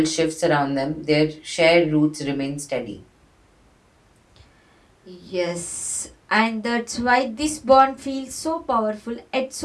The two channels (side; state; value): both; identical; correlation 1.00